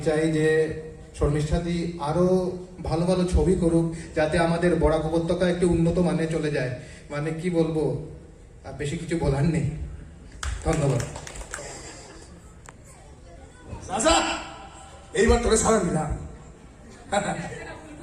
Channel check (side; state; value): both; identical; correlation 1.00